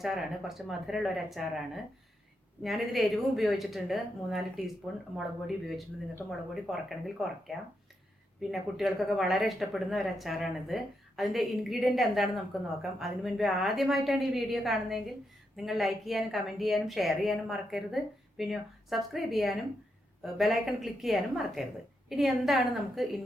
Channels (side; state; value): both; normal; correlation 0.82